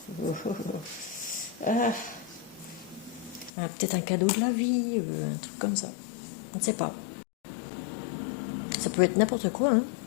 Peut-être un cadeau de la vie, un truc comme ça. On ne sait pas. Ça peut être n'importe quoi. Hein.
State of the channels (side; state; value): right; drops out; at 3.5 s